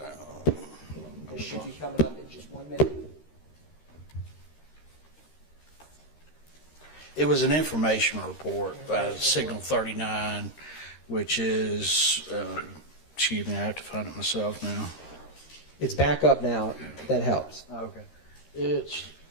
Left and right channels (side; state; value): right; late; 13 ms